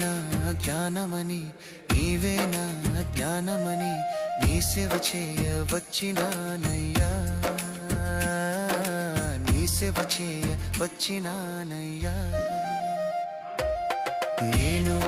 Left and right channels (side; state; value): both; identical; correlation 1.00